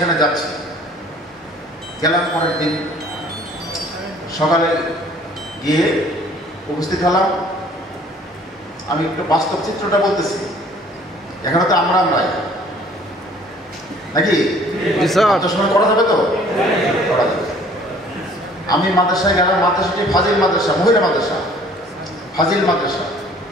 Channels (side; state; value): both; normal; correlation 0.54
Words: যাচ্ছি, গেলাম। পরের দিন সকালে গিয়ে উপস্থিত হলাম। আমি একটু বাস্তব চিত্রটা বলতেছি, এখানে তো আমরাই নাকি সময় করা যাবে তো, করা যাবে। আমি মাদ্রাসায় গেলাম। মাদ্রাসাটি ফাজিল মাদ্রাসা, মহিলা মাদ্রাসা, ফাজিল মাদ্রাসা।